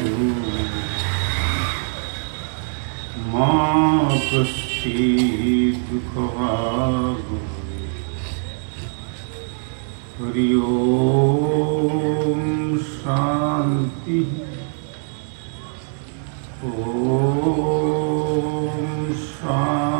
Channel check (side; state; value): left; silent; digital silence